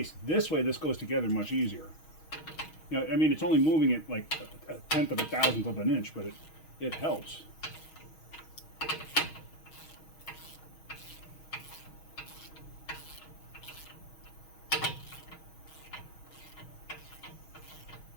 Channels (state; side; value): late; right; 6.3 ms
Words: This way, this goes together much easier. You know, I mean, it's only moving it like a tenth of a thousandth of an inch, but it helps.